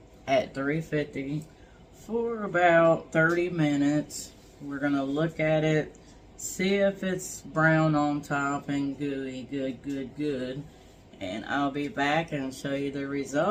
at 350 for about 30 minutes. We're gonna look at it, see if it's brown on top and gooey, good. And I'll be back and show you the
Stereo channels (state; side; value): identical; both; correlation 1.00